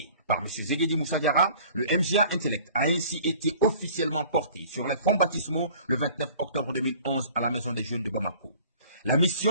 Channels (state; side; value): inverted; both; correlation -0.49